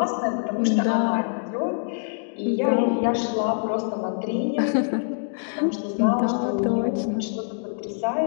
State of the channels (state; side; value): silent; right; digital silence